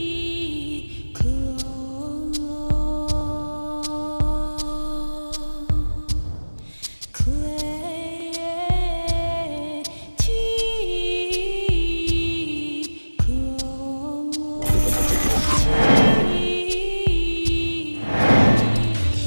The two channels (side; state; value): both; inverted; correlation -1.00